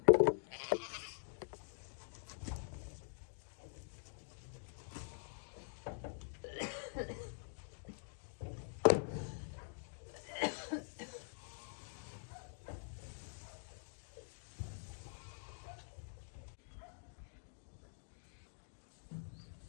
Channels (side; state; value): right; silent; digital silence